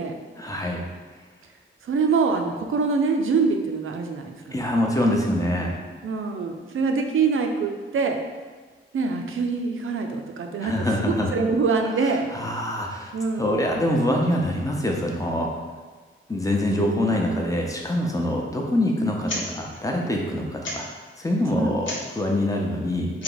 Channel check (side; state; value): both; normal; correlation 0.55